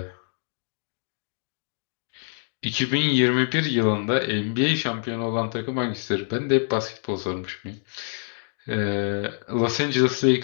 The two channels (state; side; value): silent; right; 61 dB below the other